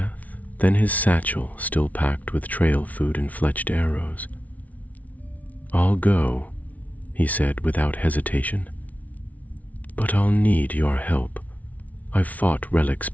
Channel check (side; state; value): right; late; 0.071 ms